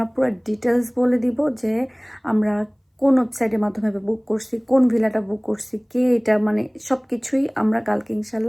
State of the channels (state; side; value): identical; both; correlation 1.00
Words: পুরো ডিটেলস বলে দিব যে আমরা কোন ওয়েবসাইটের মাধ্যমে বুক করছি, কোন ভিলাটা বুক করছি, কে এটা, মানে সব কিছুই আমরা কালকে